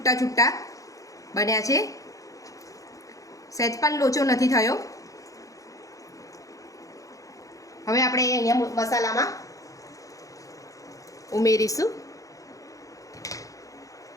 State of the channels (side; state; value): right; late; 0.16 ms